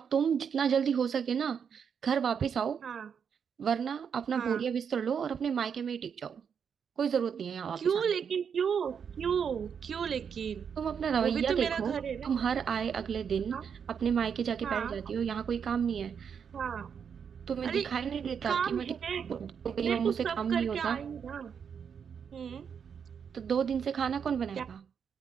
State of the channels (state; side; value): quieter; left; 7.1 dB